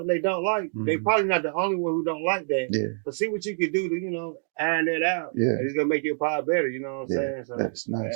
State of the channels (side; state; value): left; silent; 59 dB below the other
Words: they don't like, they probably not the only one who don't like that. Yeah. But see what you can do to, iron that out. Yeah. And it's gonna make your pod better. You know what I'm saying? So that's